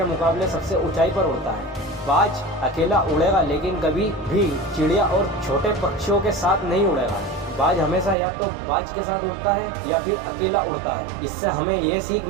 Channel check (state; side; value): drops out; left; at 8.2 s